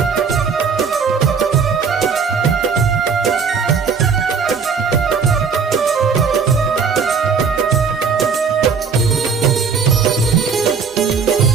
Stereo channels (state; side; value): quieter; left; 5.7 dB